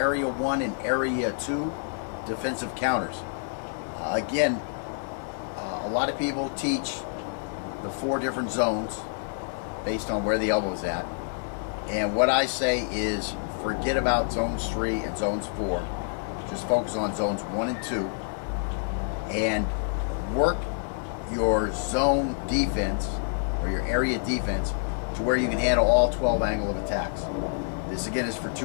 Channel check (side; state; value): right; silent; digital silence